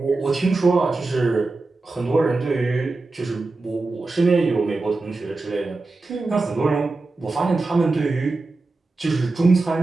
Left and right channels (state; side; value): quieter; left; 3.4 dB